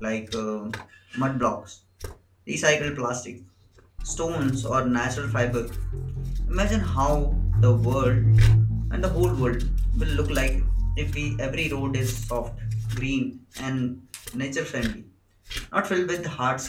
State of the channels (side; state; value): both; identical; correlation 1.00